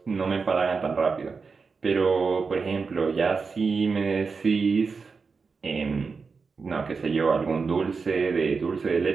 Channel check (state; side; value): quieter; left; 4.9 dB